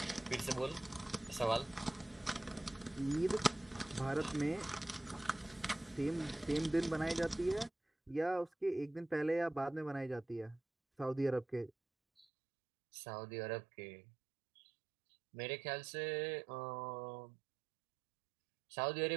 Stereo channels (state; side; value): drops out; left; at 12.2 s